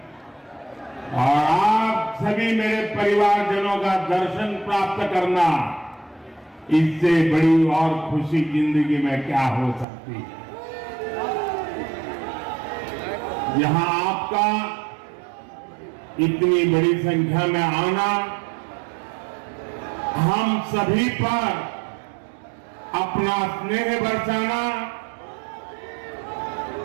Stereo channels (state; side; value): drops out; left; at 9.9 s